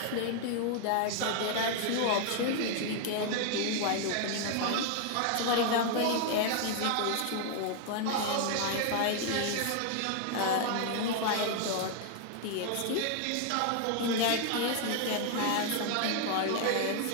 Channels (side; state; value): both; different; correlation 0.00